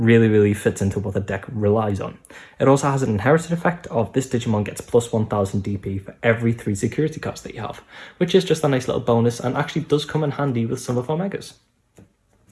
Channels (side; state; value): both; identical; correlation 1.00